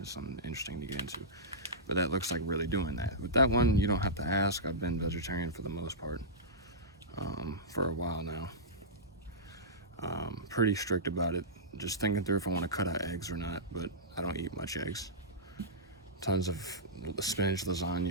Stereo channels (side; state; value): both; normal; correlation -0.14